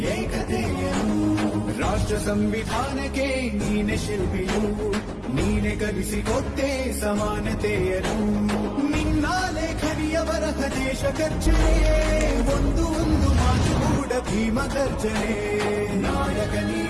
ಏಕತೆಯನು ರಾಷ್ಟ್ರ ಸಂವಿಧಾನಕ್ಕೆ ನೀನೆ ಶಿಲ್ಪಿಯು ನೀನೆ ಕಲಿಸಿಕೊಟ್ಟೆ ಸಮಾನತೆಯನು ನಿನ್ನ ಲೇಖನಿಯ ಬರಹ ದೇಶ ಗರ್ಜನೆ ಒಂದು ಮಾತು ಕೂಡ ಭೀಮ ಗರ್ಜನೆ ನಾಯಕ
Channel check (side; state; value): both; identical; correlation 1.00